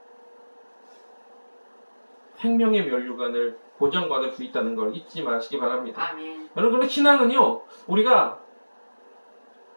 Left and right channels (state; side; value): inverted; both; correlation -1.00